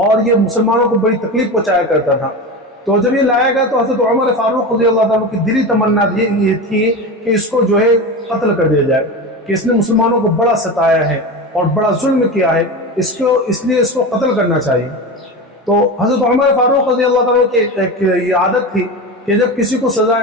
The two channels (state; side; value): normal; both; correlation 0.24